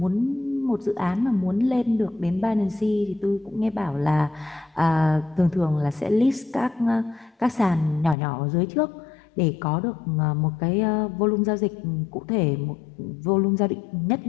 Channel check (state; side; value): drops out; right; at 8.2 s